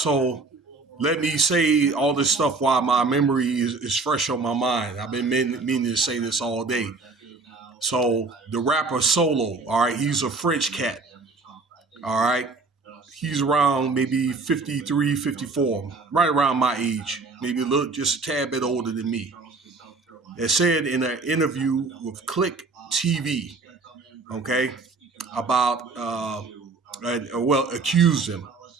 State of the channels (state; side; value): quieter; left; 3.9 dB